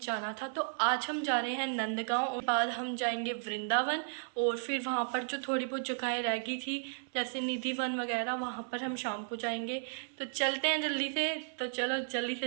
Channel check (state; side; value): silent; left; 55 dB below the other